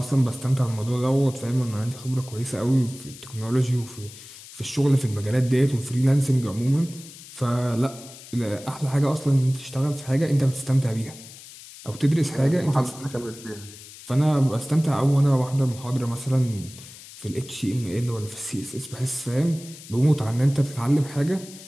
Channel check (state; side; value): noise; left; hiss, 17 dB below the sound